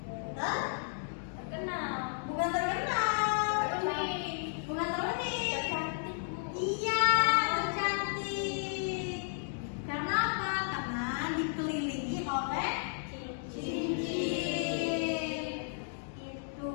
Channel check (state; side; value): silent; right; digital silence